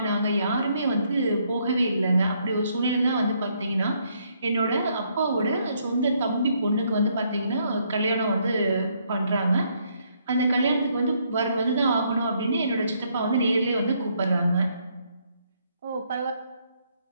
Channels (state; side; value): inverted; both; correlation -0.71